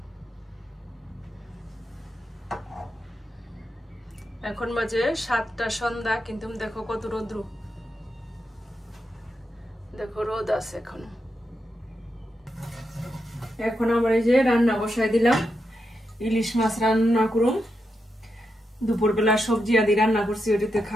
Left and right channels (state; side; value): normal; both; correlation 0.85